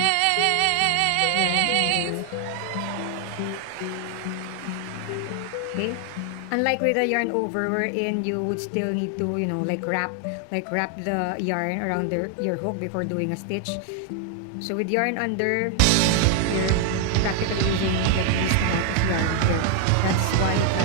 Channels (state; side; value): different; both; correlation 0.00